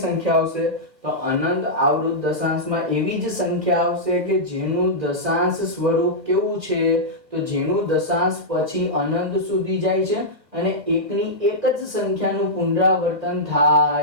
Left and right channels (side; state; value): left; late; 1.4 ms